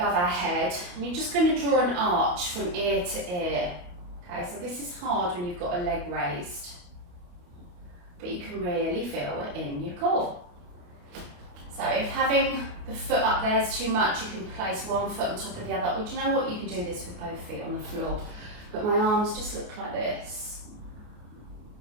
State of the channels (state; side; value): late; left; 28 ms